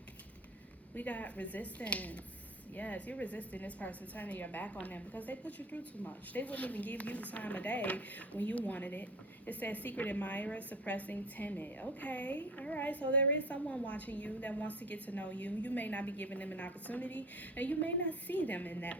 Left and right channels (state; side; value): normal; both; correlation 0.36